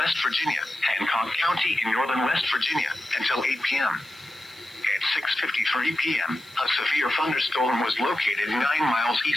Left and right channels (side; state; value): right; noise; hiss, 25 dB below the sound